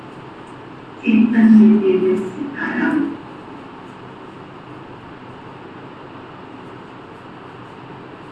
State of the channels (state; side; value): identical; both; correlation 1.00